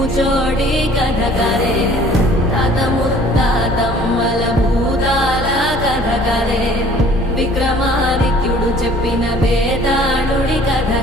కథ కదే తాత ముత్తాతమ్మల భూతాల కథ కదే విక్రమాదిత్యుడు చెప్పిన వేదాళుడి కథ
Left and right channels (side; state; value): both; normal; correlation 0.53